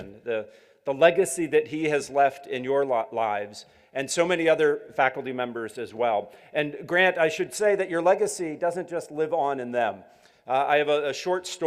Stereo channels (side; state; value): both; identical; correlation 1.00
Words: the legacy that he has left in your lives, and so many other faculty members as well. And Grant, I should say that your legacy doesn't just live on in them. I have a short